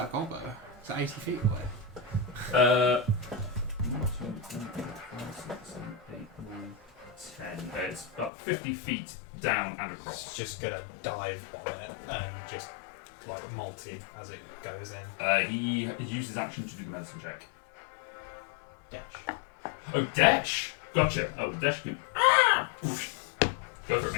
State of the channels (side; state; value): right; drops out; at 8.3 s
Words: gobbo? Is that 80 feet away? 1, 2, 3, 4, 5, 6, 7, 8, 9, 10. It's about 50 feet down and across. It's just gonna dive on it and just like multi as it goes in. He uses action to do the medicine check. Dash. Oh, dash! Gotcha. Oh, dash can. Oof. Go for it,